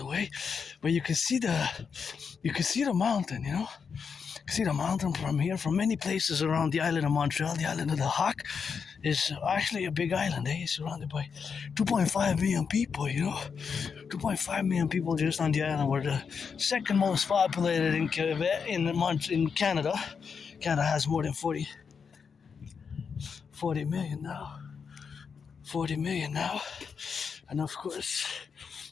But you can see the mountain, You can see the mountain from here, from many places around the island of Montreal. The island of the Hawk is actually a big island. It's surrounded by 2.5 million people, 2.5 million people just on the island. We're the second most populated in Canada. Canada has more than 40 million now. 40 million now. And of course,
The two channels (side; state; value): right; quieter; 6.1 dB